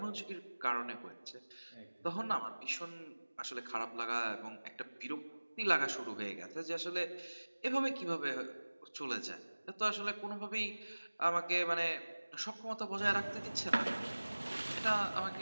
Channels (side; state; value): both; inverted; correlation -1.00